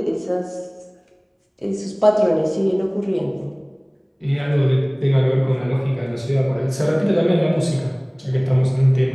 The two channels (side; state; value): both; identical; correlation 1.00